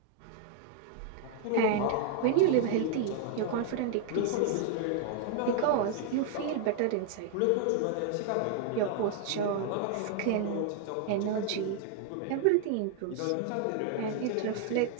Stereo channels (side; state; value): both; different; correlation 0.00